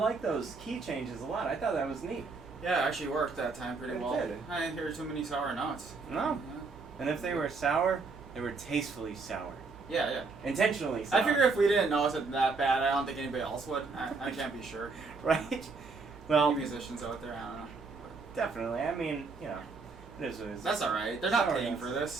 those key changes a lot. I thought that was neat. Yeah, it actually worked that time pretty It well. did. I didn't hear too many sour notes. No. Yeah. And if they were sour, they were tastefully sour. Yeah, yeah. Intentionally sour. I figure if we didn't notice it that bad, I don't think anybody else would. I can't be sure. Right? Well, Any musicians out there, I don't know. definitely. I mean, you know, it is what it is. That's alright. They're not Sour paying notes. for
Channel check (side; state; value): left; quieter; 4.3 dB